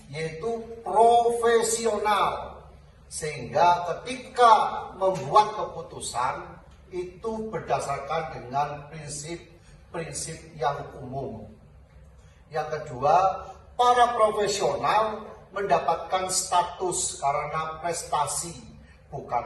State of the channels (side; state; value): both; identical; correlation 1.00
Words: yaitu profesional, sehingga ketika membuat keputusan itu berdasarkan dengan prinsip-prinsip yang umum. Yang kedua, para profesional mendapatkan status karena prestasi,